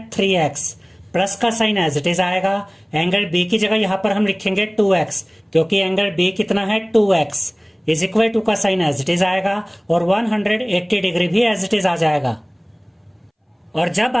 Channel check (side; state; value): both; identical; correlation 1.00